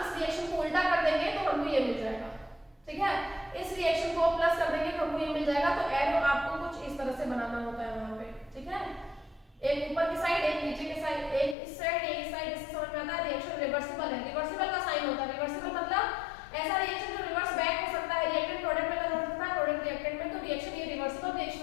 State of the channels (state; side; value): drops out; right; at 11.6 s